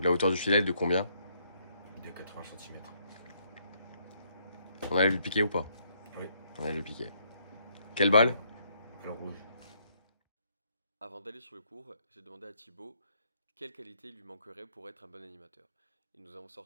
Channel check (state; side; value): inverted; both; correlation -0.71